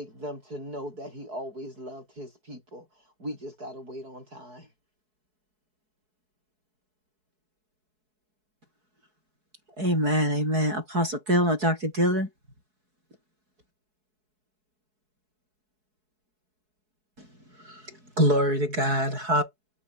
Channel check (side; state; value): left; late; 4.7 ms